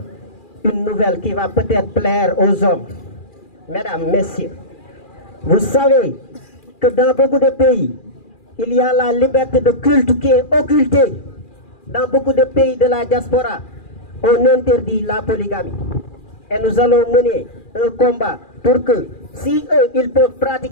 une nouvelle qui va peut-être plaire aux hommes. Mesdames, messieurs, vous savez que dans beaucoup de pays, il y a la liberté de culte qui est occultée. Dans beaucoup de pays de la diaspora, on interdit la polygamie. Et nous allons mener un combat pour que, si eux, ils peuvent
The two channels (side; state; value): right; late; 2.4 ms